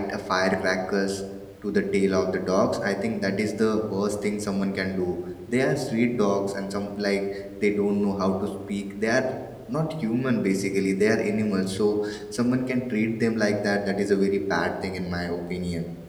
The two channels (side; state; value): both; identical; correlation 1.00